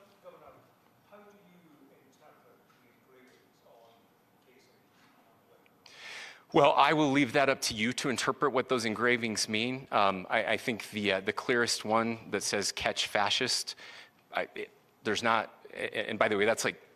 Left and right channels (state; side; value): identical; both; correlation 1.00